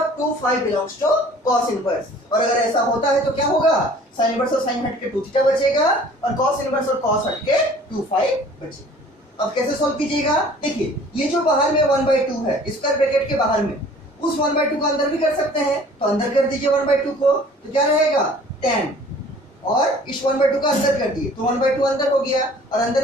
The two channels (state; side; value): normal; both; correlation 0.50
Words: 2 five belongs to cos inverse. और अगर ऐसा होता है तो क्या होगा, साइन इनवर्स और साइन हट के 2 थीटा बचेगा और cos इनवर्स और cos हट के 2 फाइव बचेगा। अब कैसे सॉल्व कीजिएगा, देखिए ये जो बाहर में 1/2 है स्क्वायर ब्रैकेट के बाहर में, उस 1/2 को अंदर भी कर सकते हैं, तो अंदर कर दीजिए 1/2 को, तो क्या रहेगा tan, और इस 1/2 का अंदर कर दिए तो 1/2 अंदर हो गया और